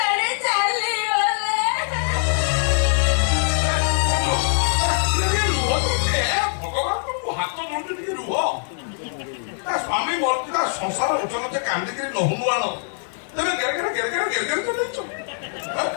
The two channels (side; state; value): right; silent; digital silence